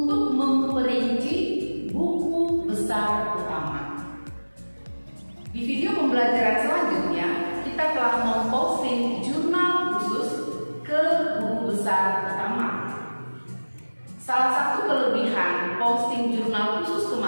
memperinci buku besar utama. Di video pembelajaran selanjutnya, kita telah memposting jurnal khusus ke buku besar utama. Salah satu kelebihan posting jurnal khusus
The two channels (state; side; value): inverted; both; correlation -1.00